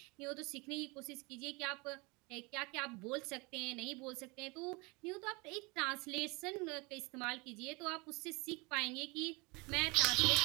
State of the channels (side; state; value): left; quieter; 27.3 dB